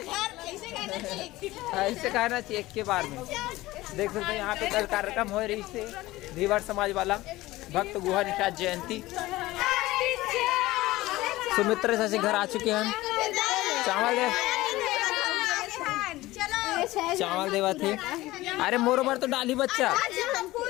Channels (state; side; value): quieter; right; 18.1 dB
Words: ऐसे कहना चाहिए एक के बार में। देख सकते हैं यहाँ पे कल कार्यक्रम हो रही से धीवर समाज वाला भक्त गुहा निषाद जयंती। सुमित्र से घर आ चुके हैं। चावल दे चावल देवा थे। अरे मोरो बार तो डाली बच्चा।